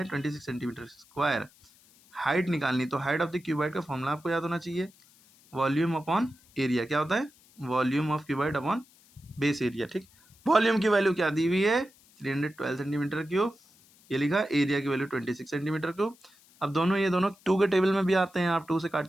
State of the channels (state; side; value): noise; left; hiss, 28 dB below the sound